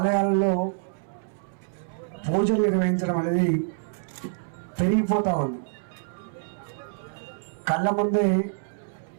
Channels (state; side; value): silent; left; 60 dB below the other